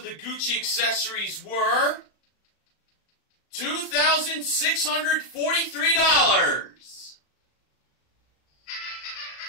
the Gucci accessories were $2,643.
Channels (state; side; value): late; right; 36 ms